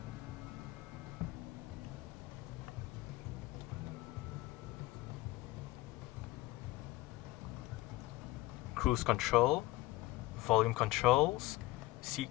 Cruise control, volume controls, seat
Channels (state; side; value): quieter; right; 18.9 dB